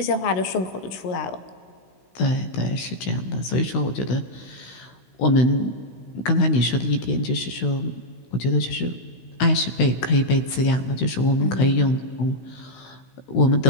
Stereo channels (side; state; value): right; late; 16 ms